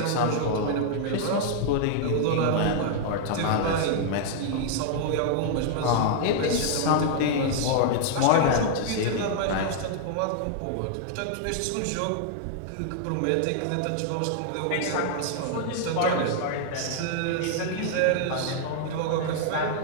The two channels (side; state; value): both; different; correlation -0.01